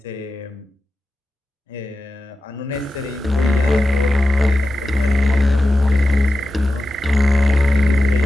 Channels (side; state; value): both; normal; correlation 0.92